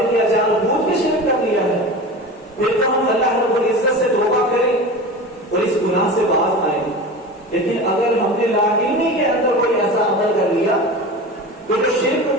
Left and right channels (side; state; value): both; normal; correlation 0.31